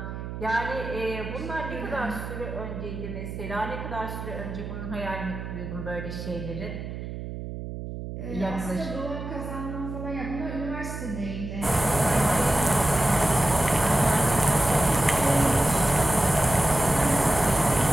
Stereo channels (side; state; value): right; noise; hum, 8 dB below the sound